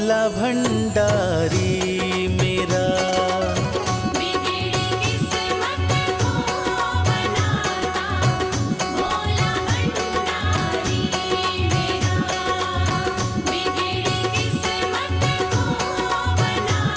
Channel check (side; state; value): both; identical; correlation 1.00